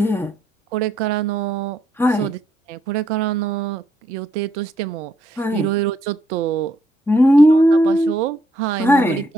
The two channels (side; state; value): both; normal; correlation 0.74